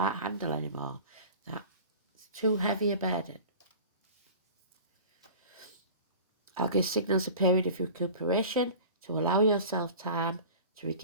handle anymore. That's too heavy a burden. Algis signals a period of recuperation to allow yourself time to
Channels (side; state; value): both; inverted; correlation -0.39